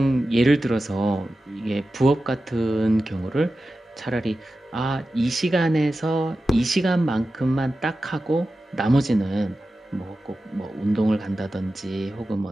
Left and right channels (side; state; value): both; normal; correlation 0.93